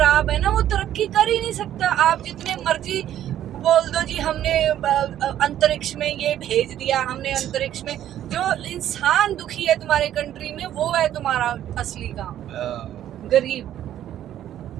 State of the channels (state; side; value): quieter; left; 11.6 dB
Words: है ना, वो तरक्की कर ही नहीं सकता। आप जितने मर्जी बोल दो जी हमने अंतरिक्ष में ये भेज दिया, हमने अंतरिक्ष में, जो इंसान दुखी है तुम्हारे कंट्री में, वो है तुम्हारा असली काम। गरीब